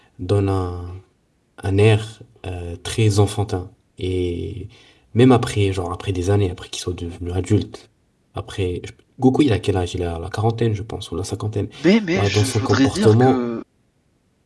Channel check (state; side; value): identical; both; correlation 1.00